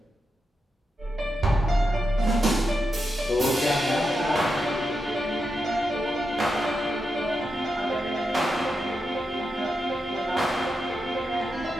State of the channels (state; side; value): normal; both; correlation 0.87